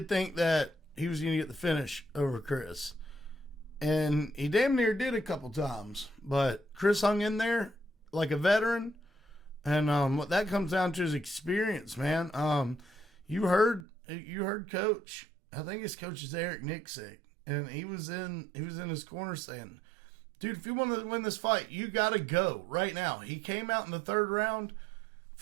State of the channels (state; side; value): drops out; left; at 13.9 s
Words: think that he was going to get the finish over Chris. And he damn near did a couple times. But Chris hung in there like a veteran. And what that comes down to is experience, man. You heard Coach. I think his coach is Eric Nixick. And he was in his corner saying, dude, if you want to win this fight, you got to go right now. He came out in the third round